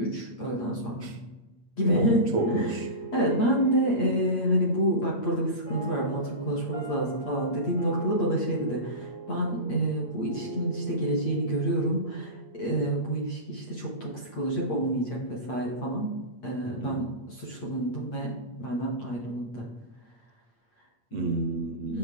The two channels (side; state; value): right; late; 8.5 ms